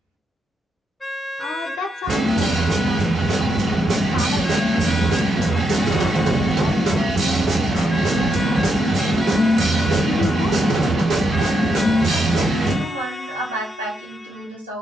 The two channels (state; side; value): normal; both; correlation 0.81